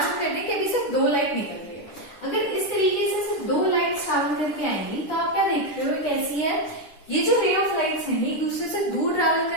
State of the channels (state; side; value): late; right; 10 ms